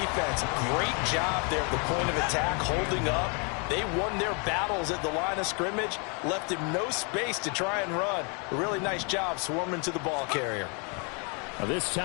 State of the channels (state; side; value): quieter; right; 35.1 dB